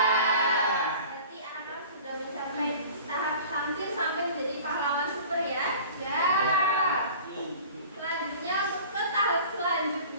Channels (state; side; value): inverted; both; correlation -0.43